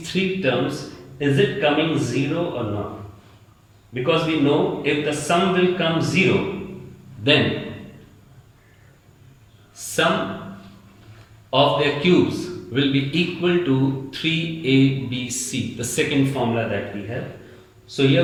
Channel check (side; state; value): both; identical; correlation 1.00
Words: 3 terms, is it coming 0 or not. Because we know if the sum will come 0, then sum of their cubes will be equal to 3ABC, the second formula that we have. So